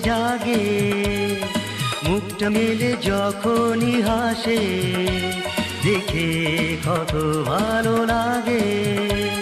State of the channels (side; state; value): both; identical; correlation 1.00